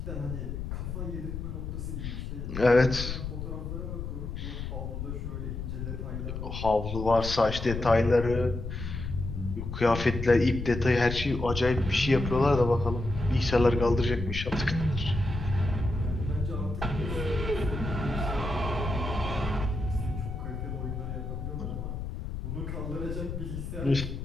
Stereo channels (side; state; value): left; noise; rumble, 6 dB below the sound